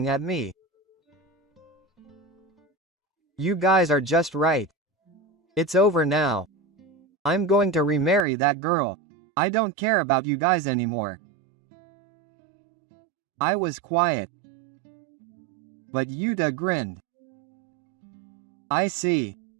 at me. You guys are just right. It's over now. I'm going to remarry that girl. I don't care about you guys anymore. I was quiet. But Yuta grinned. I see.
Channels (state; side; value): drops out; left; at 8.2 s